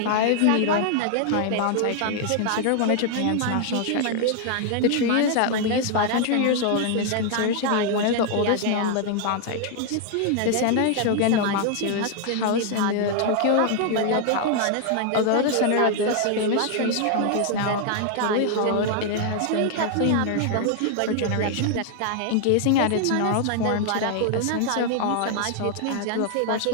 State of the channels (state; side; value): different; both; correlation 0.00